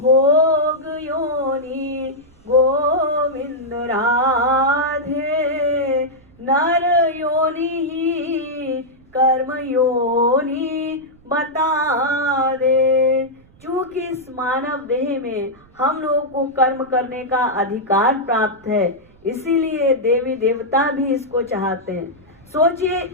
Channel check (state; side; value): noise; right; rumble, 27 dB below the sound